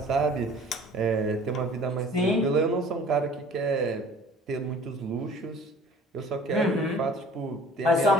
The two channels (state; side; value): normal; both; correlation 0.49